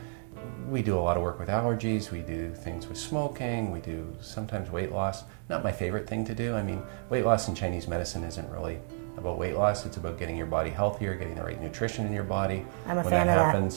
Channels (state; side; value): silent; left; digital silence